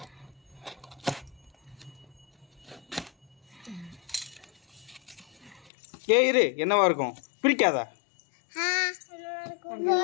ஏய் இரு என்னவா இருக்கும் பிரிக்காதா?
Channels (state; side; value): drops out; right; at 5.7 s